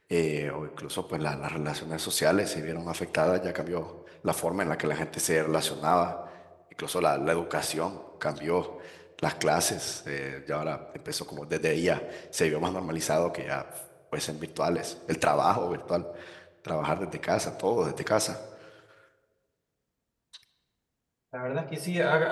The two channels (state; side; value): identical; both; correlation 1.00